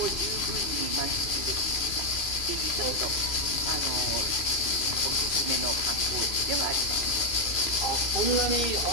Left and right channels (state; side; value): late; right; 2.4 ms